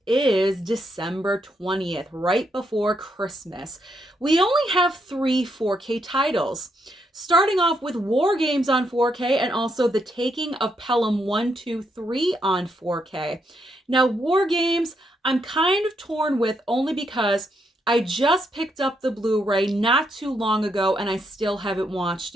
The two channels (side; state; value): both; normal; correlation 0.78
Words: is December 20th, right before Christmas. We only have 3 4K titles. Starting off with War Games on 4K and also The Taking of Pelham 1, 2, 3 on 4K. Now, War Games, I'm kind of torn with only because I just picked up the Blu-ray not too long ago and I still haven't watched